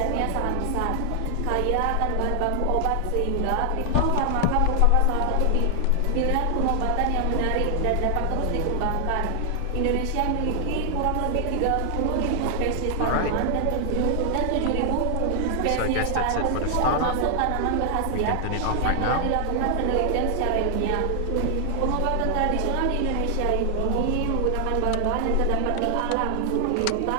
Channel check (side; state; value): both; different; correlation 0.00